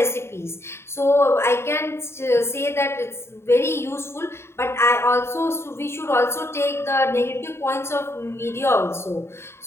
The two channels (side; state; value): right; late; 0.12 ms